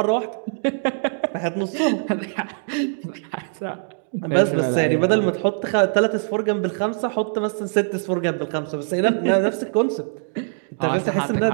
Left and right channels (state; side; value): silent; left; digital silence